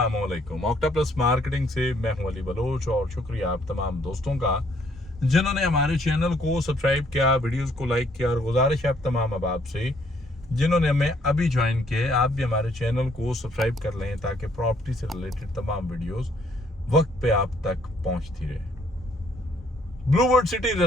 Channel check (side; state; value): both; normal; correlation 0.66